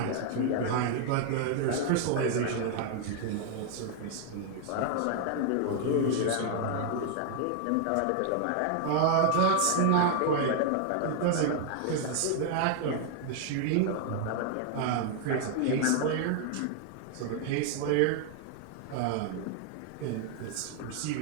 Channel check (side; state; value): both; different; correlation 0.00